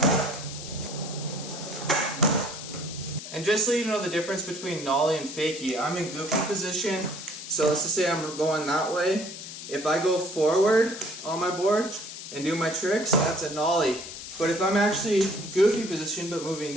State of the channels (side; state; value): left; noise; hiss, 10 dB below the sound